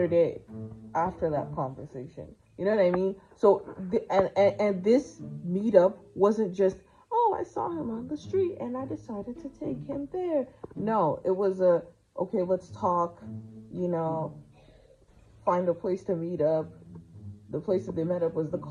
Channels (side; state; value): both; identical; correlation 1.00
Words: day after that conversation. You know what I mean? So, and this meetup wasn't just, oh, I saw him on the street and I decided to take him there. No, it was okay, let's talk, find a place to meet up. The place that they met up was the